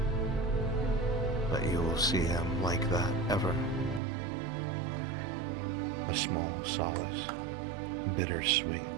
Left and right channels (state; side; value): drops out; left; at 4.0 s